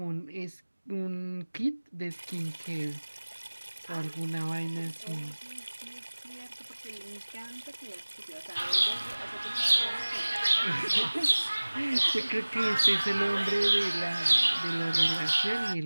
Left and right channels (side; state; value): both; inverted; correlation -1.00